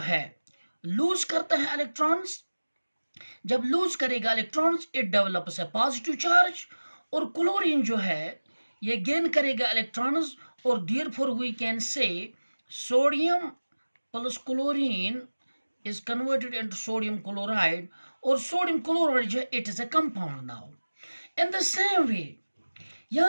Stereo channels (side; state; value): both; inverted; correlation -1.00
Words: लूज करता है इलेक्ट्रॉन्स। जब लूज करेगा electrons, it develops a positive charge. और क्लोरीन जो है ये गेन करेगा इलेक्ट्रॉन्स, और therefore we can say sodium plus chlorine is converted into sodium chloride, और sodium chloride जो है it is a compound now. In the same way,